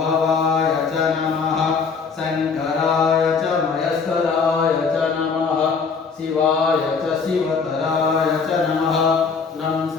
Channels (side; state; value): right; quieter; 5.3 dB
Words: भवाय च नमः शङ्कराय च मयस्कराय च नमः शिवाय च शिवतराय च नमः तं